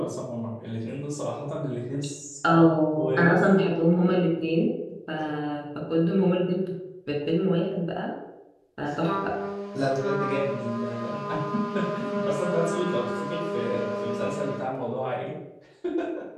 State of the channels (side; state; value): both; identical; correlation 1.00